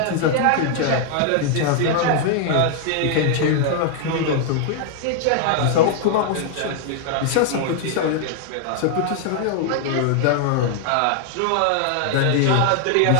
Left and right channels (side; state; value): both; different; correlation 0.00